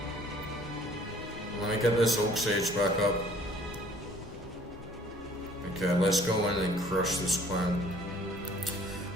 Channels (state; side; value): normal; both; correlation 0.56